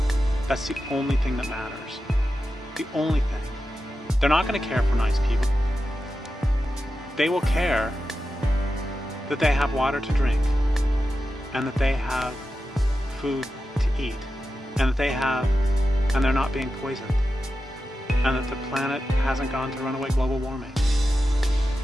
That's the only thing that matters. The only thing. They're not going to care for nice people. They will care that they have water to drink, and that they have food to eat, and and they're not being poisoned, and that the planet hasn't gone to runaway global warming.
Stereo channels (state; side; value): normal; both; correlation 0.91